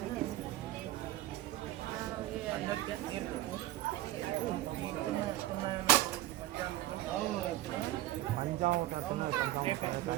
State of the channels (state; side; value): quieter; left; 15.4 dB